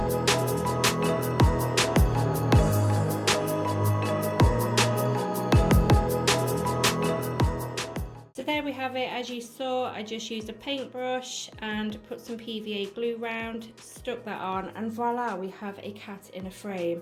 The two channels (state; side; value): identical; both; correlation 1.00